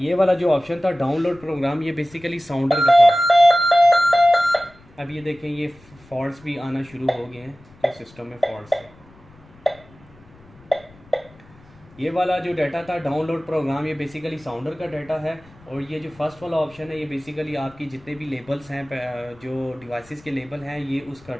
वाला जो ऑप्शन था डाउनलोड प्रोग्राम, ये बेसिकली साउंडर का था। अब ये देखें ये फॉल्ट्स भी आना शुरू हो गए हैं कि सिस्टम में फॉल्ट्स है। ये वाला जो डाटा था डाउनलोड प्रोग्राम, ये बेसिकली साउंडर का डाटा है। और ये जो फर्स्ट वाला ऑप्शन है ये बेसिकली आपकी जितने भी लेबल्स हैं, जो डिवाइसेस के लेबल हैं, ये उसका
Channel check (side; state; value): left; noise; rumble, 26 dB below the sound